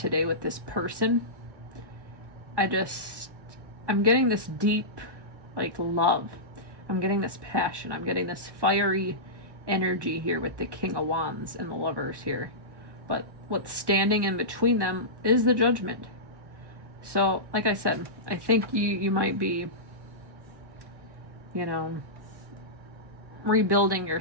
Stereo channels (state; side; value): late; left; 1.1 ms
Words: with this person. I'm getting this deep like love. I'm getting this passion. I'm getting this fiery energy here with the King of Wands and the Lovers here. But what's standing in between them is the Judgment. So, like I said, I think you might be, rebuilding